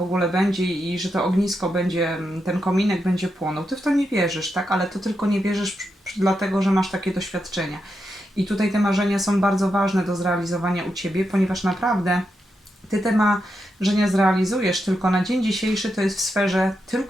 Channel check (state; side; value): normal; both; correlation 0.85